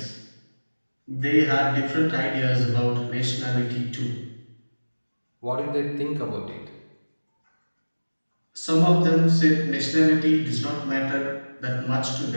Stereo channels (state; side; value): inverted; both; correlation -1.00